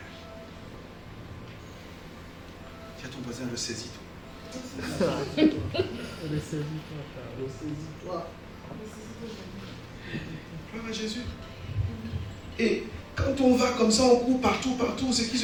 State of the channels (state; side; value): identical; both; correlation 1.00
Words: Tiens, ton voisin, le saisis-toi. Saisis-toi. Gloire à Jésus. Et quand on va comme ça, on court partout, ce qui